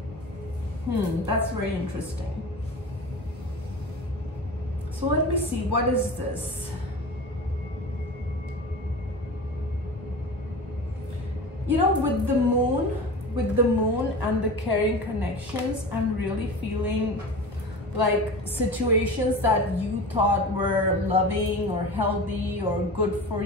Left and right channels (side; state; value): both; normal; correlation 0.32